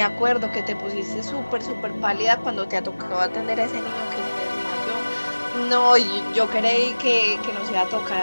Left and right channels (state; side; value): inverted; both; correlation -1.00